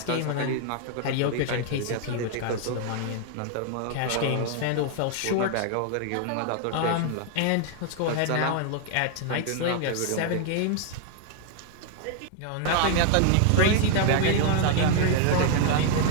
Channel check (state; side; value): different; both; correlation 0.00